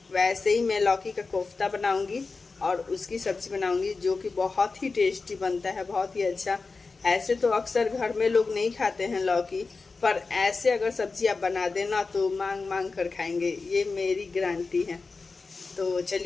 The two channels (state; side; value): quieter; right; 4.1 dB